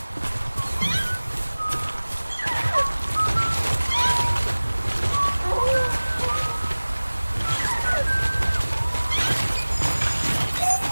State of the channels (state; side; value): inverted; both; correlation -1.00